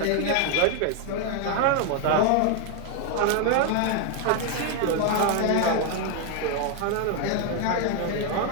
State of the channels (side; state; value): both; different; correlation 0.00